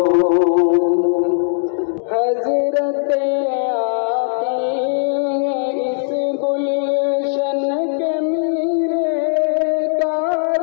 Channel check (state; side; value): silent; right; digital silence